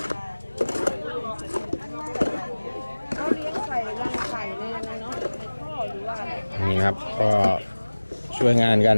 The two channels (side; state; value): both; inverted; correlation -1.00